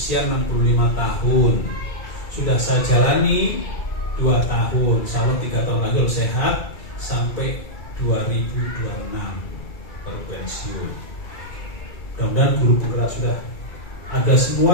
65 tahun. Sudah saya jalani 2 tahun, insya Allah 3 tahun lagi sehat sampai 2026 baru pensiun. Mudah-mudahan guru penggerak sudah ada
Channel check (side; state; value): right; late; 2.3 ms